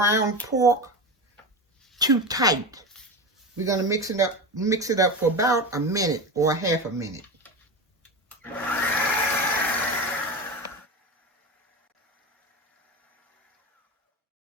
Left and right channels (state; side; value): normal; both; correlation 0.23